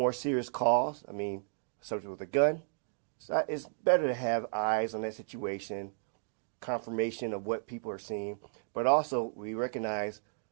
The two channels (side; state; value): left; silent; digital silence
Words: serious calls. Subject with a gun. So it's better to have eyes on that situation, confirmation of what people are seeing, but also we recognize